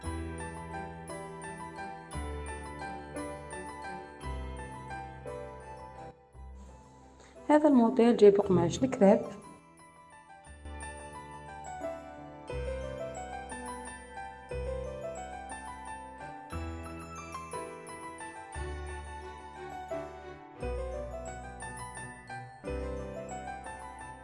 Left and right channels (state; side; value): identical; both; correlation 1.00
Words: هذا الموديل جايب قماش الكريب.